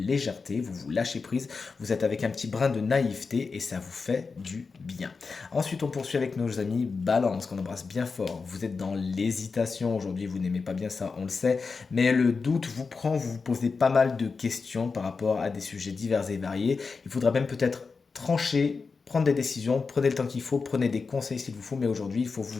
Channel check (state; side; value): quieter; right; 4.7 dB